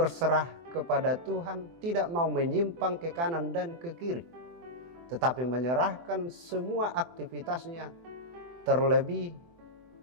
kepada Tuhan, tidak mau menyimpang ke kanan dan ke kiri, tetapi menyerahkan semua aktivitasnya, terlebih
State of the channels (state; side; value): late; left; 24 ms